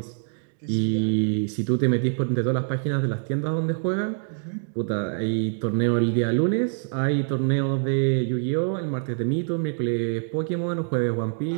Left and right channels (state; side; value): silent; left; digital silence